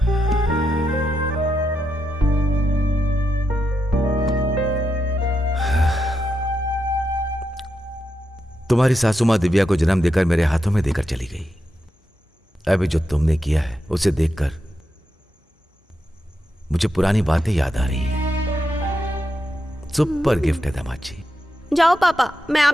तुम्हारी सासू माँ दिव्या को जन्म देकर मेरे हाथों में देकर चली गई। अभी जो तुमने किया है उसे देखकर मुझे पुरानी बातें याद आ रही हैं। सुपर गिफ्ट है दामाद जी। जाओ पापा, मैं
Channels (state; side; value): normal; both; correlation 0.85